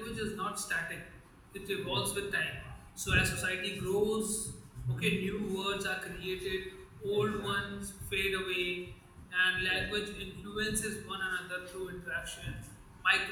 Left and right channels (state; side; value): identical; both; correlation 1.00